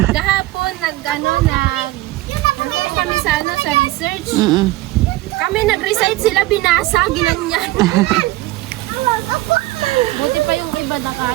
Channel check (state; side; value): quieter; left; 18.3 dB